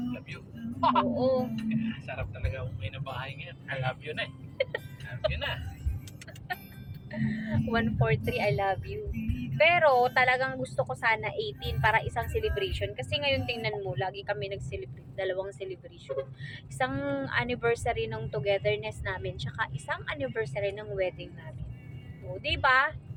Love you. Oo. Sarap talaga umuwi na bahay ngayon. I love you na eh. Love you na. 143, I love you. Pero talagang gusto ko sana 18 para isang celebration. Kasi ngayon tingnan mo, lagi kami nag-celebrate. Dalawang celebration. Isang anniversary ng togetherness namin, tsaka isang anniversary ng wedding namin. O, diba?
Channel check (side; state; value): both; identical; correlation 1.00